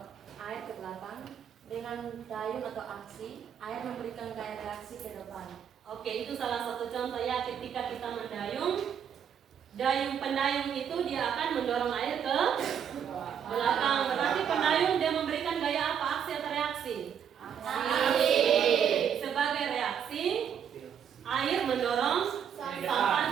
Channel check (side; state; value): left; quieter; 8.3 dB